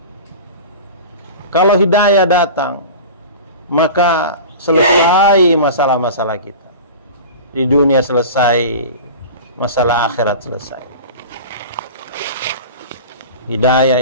Kalau hidayah datang, maka selesai masalah-masalah kita. Di dunia selesai, masalah akhirat selesai. Hidayah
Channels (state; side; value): inverted; both; correlation -0.35